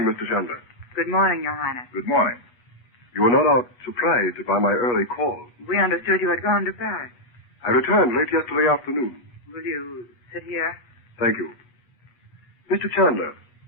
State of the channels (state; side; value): late; right; 8.3 ms